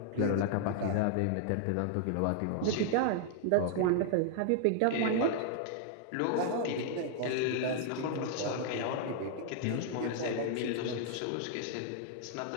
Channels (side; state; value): both; different; correlation 0.00